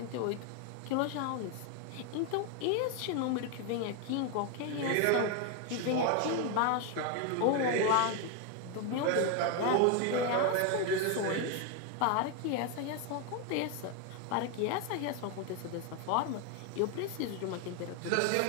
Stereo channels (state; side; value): different; both; correlation 0.01